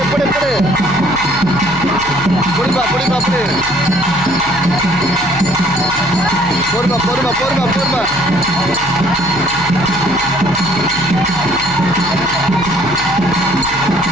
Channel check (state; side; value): noise; left; hum, 15 dB below the sound